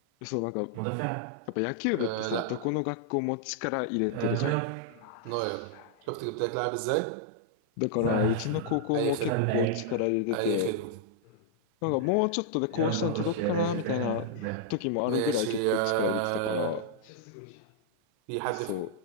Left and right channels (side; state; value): both; different; correlation -0.01